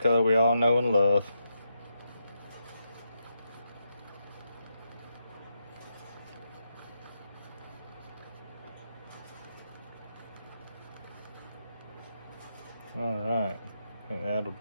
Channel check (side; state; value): both; inverted; correlation -0.84